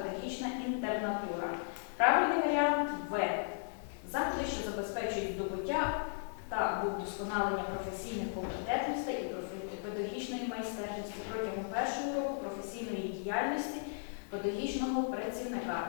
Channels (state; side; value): silent; right; digital silence